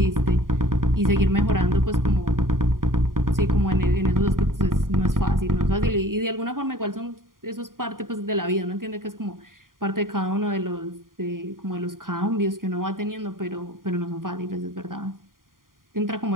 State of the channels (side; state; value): left; late; 0.91 ms